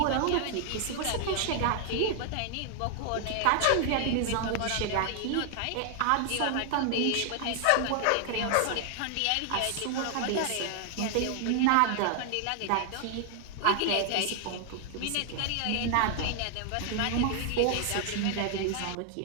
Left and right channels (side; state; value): both; different; correlation 0.00